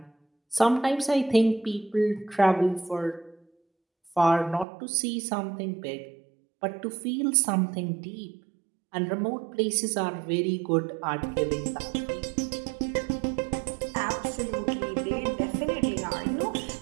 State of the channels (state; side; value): drops out; left; at 4.7 s